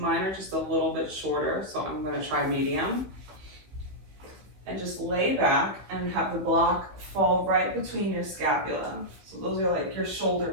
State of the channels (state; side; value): late; left; 15 ms